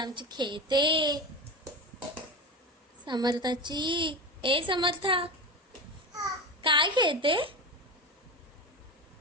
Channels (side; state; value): both; normal; correlation 0.24